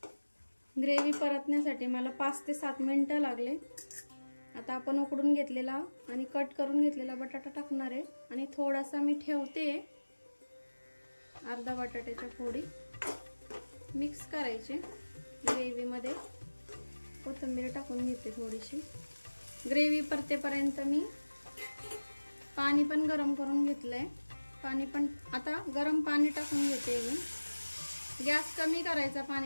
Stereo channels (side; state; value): both; inverted; correlation -1.00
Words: ग्रेव्ही परतण्यासाठी मला 5 ते 7 मिनिटं लागले। आता आपण उकडून घेतलेला आणि कट करून घेतलेला बटाटा टाकणार आहे आणि थोडासा मी ठेवते, अर्धा बटाट्याच्या फोडी मिक्स करायचे ग्रेव्हीमध्ये। कोथिंबीर टाकून घेते थोडीशी। ग्रेव्ही परतेपर्यंत मी पाणी पण गरम करून घेतलंय। पाणी पण आता गरम पाणी टाकून घेते मी। गॅस कमी करायचा